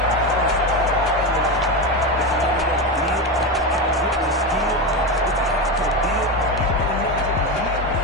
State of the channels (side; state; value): both; normal; correlation 0.16